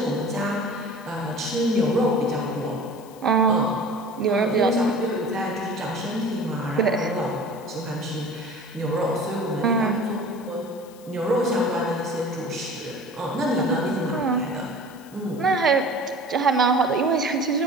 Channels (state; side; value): noise; left; hiss, 24 dB below the sound